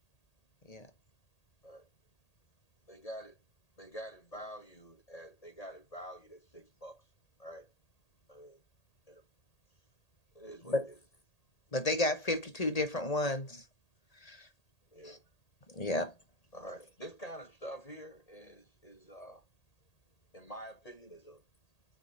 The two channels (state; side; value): late; right; 1.8 ms